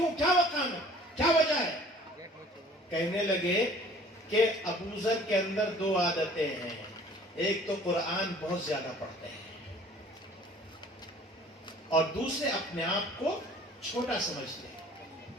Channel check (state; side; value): normal; both; correlation 0.51